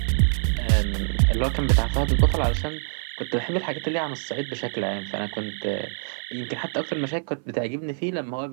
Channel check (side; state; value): left; silent; 62 dB below the other